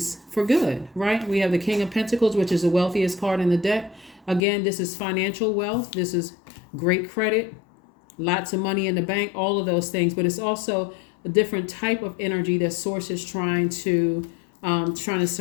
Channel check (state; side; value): drops out; right; at 4.4 s